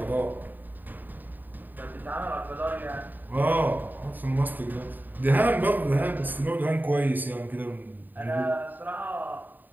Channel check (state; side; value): late; left; 0.089 ms